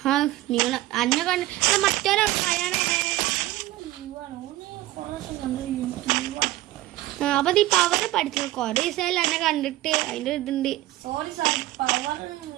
നിങ്ങൾ അന്നെ കണ്ട് മറ്റൊരാ അപ്പൊ ഈ പവറ് പഠിച്ചു കൊറേ ദിവസമായാലും എന്നെ കണ്ടിട്ട് അതിന്റെ ഇതുണ്ട്. Sorry sir, power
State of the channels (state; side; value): quieter; left; 16.4 dB